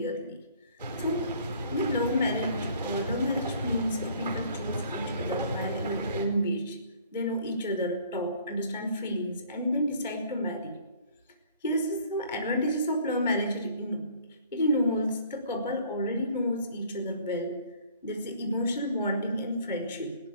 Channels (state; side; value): inverted; both; correlation -0.55